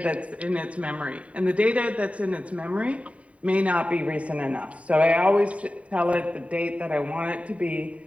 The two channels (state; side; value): late; left; 0.066 ms